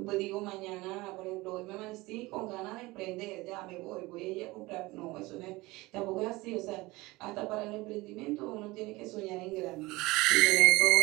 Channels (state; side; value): quieter; left; 21.3 dB